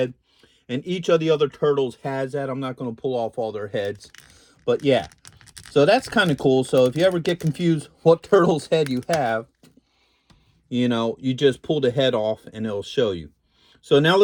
And each of the other turtles has that. I'm not going to pull off all their heads. But yeah, so that's kind of cool. So if you ever get confused what turtle's head you have, you know, you just pull the head off and it'll show you. So now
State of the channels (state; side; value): identical; both; correlation 1.00